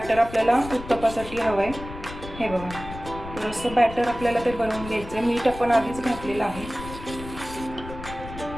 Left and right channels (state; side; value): noise; left; rumble, 12 dB below the sound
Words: आपल्याला उत्तप्पासाठी हवं आहे. हे बघा, तर असं बॅटर आपल्याला ते बनवून घ्यायचं आहे. मीठ आपण आधीच घातलेलं आहे.